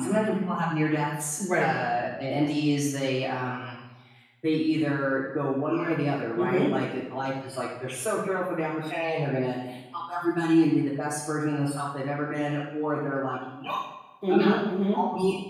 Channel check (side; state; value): both; identical; correlation 1.00